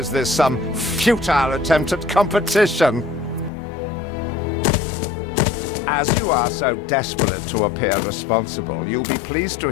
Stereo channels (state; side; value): drops out; right; at 3.5 s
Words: this some futile attempt at competition? As you are so desperate to appear responsible, you'll be pleased to